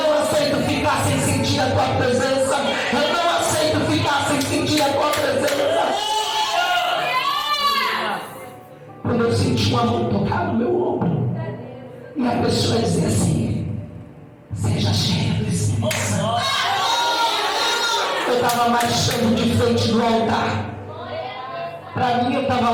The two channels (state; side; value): identical; both; correlation 1.00